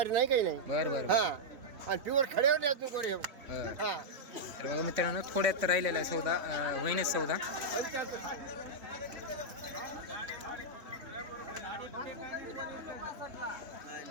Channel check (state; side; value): late; left; 3.6 ms